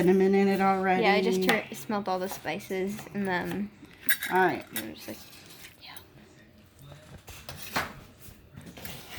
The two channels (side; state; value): both; identical; correlation 1.00